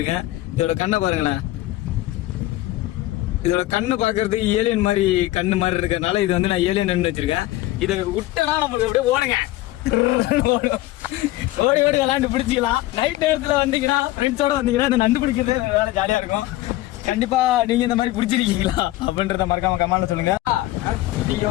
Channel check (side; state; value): right; quieter; 16.9 dB